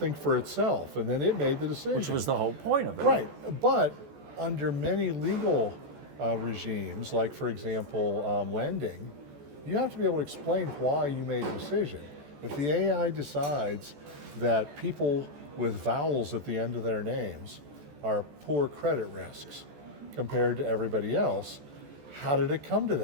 for itself, and then it made the decision. Which was the whole point of it. Right, but under many legal regimes, like for example, lending, you have to be able to explain why you made a decision. If the AI decides that people with vowels at the end of their names are poor credit risks compared to everybody else, how did it come to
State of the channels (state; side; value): late; left; 14 ms